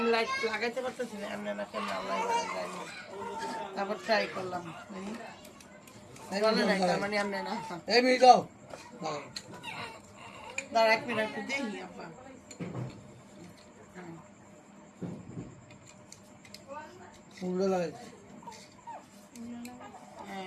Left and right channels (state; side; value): identical; both; correlation 1.00